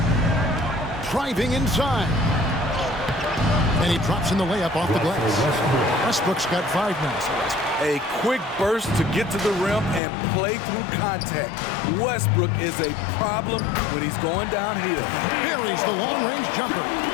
Driving inside. And he drops in the layup off the glass. Westbrook's got 5 now. A quick burst to get to the rim and play through contact. Westbrook is a problem when he's going downhill. Buries the long-range jumper.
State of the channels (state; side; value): drops out; right; at 10.0 s